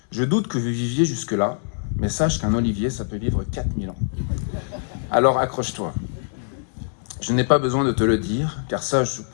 Je doute que vous viviez jusque-là, mais sache qu'un Olivier, ça peut vivre 4000 ans. Alors accroche-toi. Je n'ai pas besoin de te le dire, car ça, je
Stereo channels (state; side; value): silent; right; digital silence